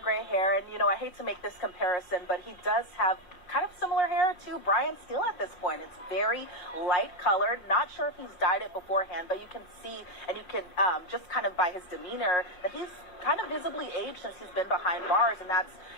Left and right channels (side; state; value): right; late; 5.6 ms